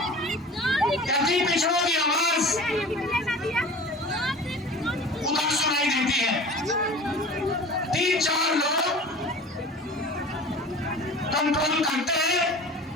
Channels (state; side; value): normal; both; correlation 0.39